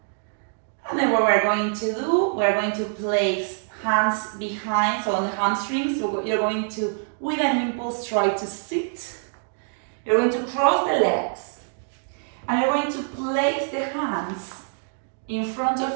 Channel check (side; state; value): left; silent; digital silence